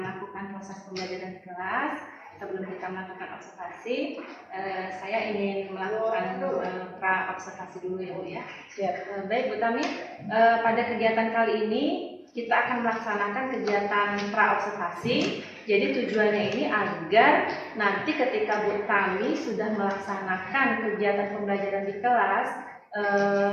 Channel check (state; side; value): identical; both; correlation 1.00